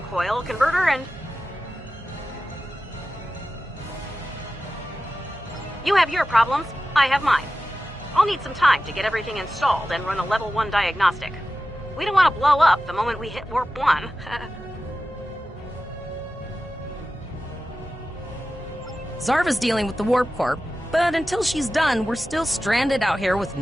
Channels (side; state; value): both; normal; correlation 0.94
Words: coil converter and... You have your problems, I have mine. I'll need some time to get everything installed and run a level 1 diagnostic. We don't want to blow up the moment we hit warp 1. Zarva's dealing with the Warp Corp, but until she's done, we're still stranded out here with